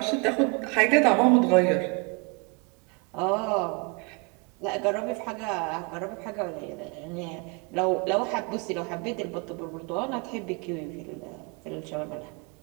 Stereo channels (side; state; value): left; quieter; 30.7 dB